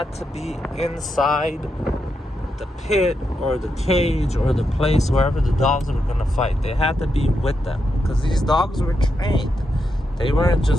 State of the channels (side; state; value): both; normal; correlation 0.84